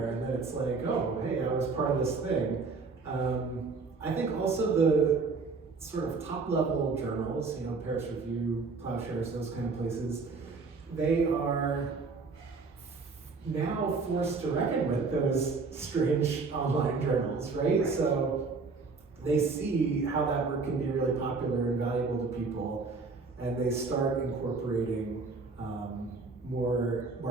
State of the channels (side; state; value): left; quieter; 4.3 dB